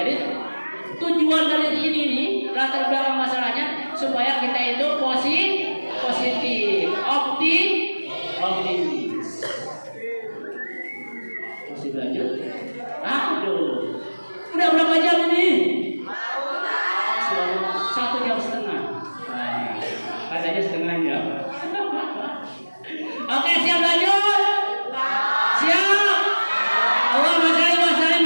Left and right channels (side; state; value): both; inverted; correlation -1.00